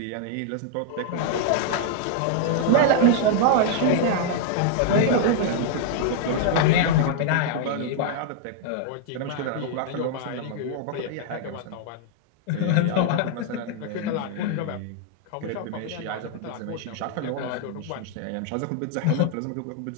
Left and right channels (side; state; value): both; different; correlation -0.01